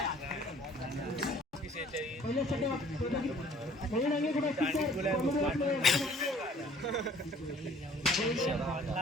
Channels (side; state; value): both; normal; correlation 0.55